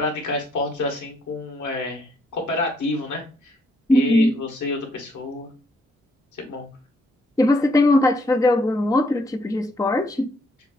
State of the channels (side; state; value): both; normal; correlation 0.71